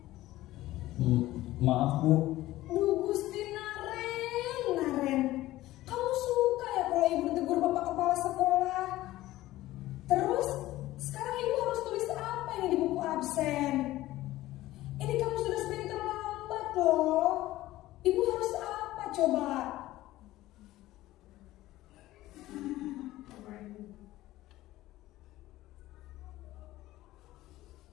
Maaf, Bu. Duh, Gusti Naren, kamu suka ya kalau ibu ditegur bapak kepala sekolah? Terus, sekarang ibu harus tulis apa ini di buku absen? Ini kamu sudah sering terlambat loh. Ibu harus apa coba?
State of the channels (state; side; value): quieter; right; 16.2 dB